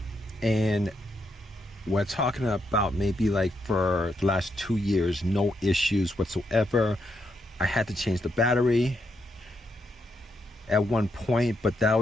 And we're talking about maybe like for the last 2 years, no issues whatsoever. I had to change the battery at one point, but that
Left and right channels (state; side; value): normal; both; correlation 0.80